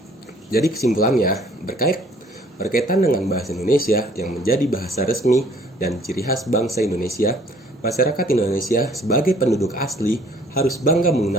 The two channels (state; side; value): normal; both; correlation 0.58